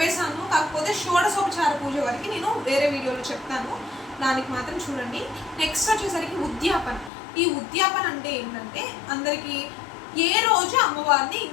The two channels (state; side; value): drops out; right; at 7.1 s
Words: కాకపోతే షోడశోపచార పూజ వరకు నేను వేరే వీడియోలో చెప్తాను, దానికి మాత్రం చూడండి. నెక్స్ట్ వచ్చేసరికి ఉద్యాపన. ఈ ఉద్యాపన అంటే ఏంటంటే అందరికీ ఏ రోజు అమ్మవారిని